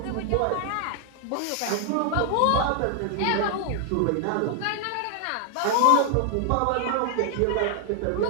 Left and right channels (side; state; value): both; different; correlation 0.00